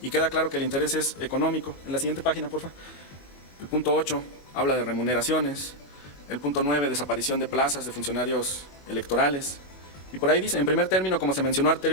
queda claro que el interés es económico. En la siguiente página, por favor. El punto 8 habla de remuneraciones. El punto 9, desaparición de plazas de funcionarios electorales. Y por ahí dice, en primer término, como se mencionó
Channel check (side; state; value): right; late; 21 ms